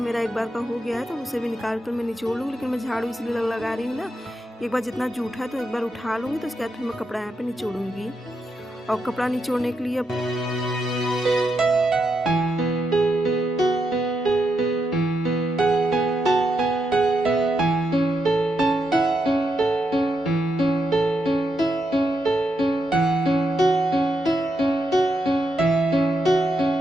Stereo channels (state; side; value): normal; both; correlation 0.82